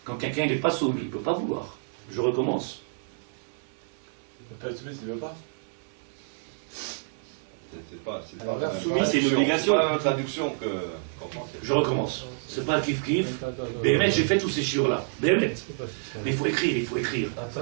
Quand quelqu'un n'est pas soumis, il ne peut pas vouloir. Je recommence. soumis, c'est une obligation. C'est pas la traduction qu'on pense. Je recommence. C'est pas kiff kiff. Béhémet, j'ai fait tous ces chiures-là. Béhémet. Mais il faut écrire, il faut écrire.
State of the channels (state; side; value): silent; left; 58 dB below the other